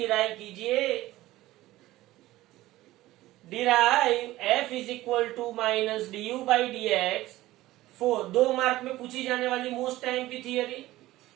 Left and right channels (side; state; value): left; quieter; 16.7 dB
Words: कीजिए। Derive F is equal to minus D by D X. 2 mark में पूछी जाने वाली मोस्ट टाइम की theory